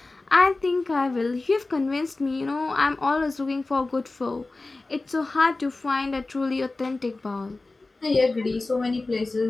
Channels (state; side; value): quieter; right; 3.3 dB